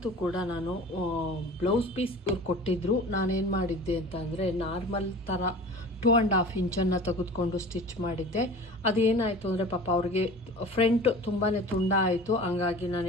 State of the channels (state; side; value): normal; both; correlation 0.39